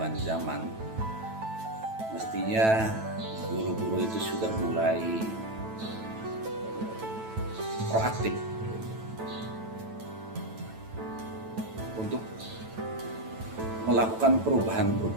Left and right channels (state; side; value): late; left; 9.1 ms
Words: zaman mestinya guru-guru itu sudah mulai proaktif untuk melakukan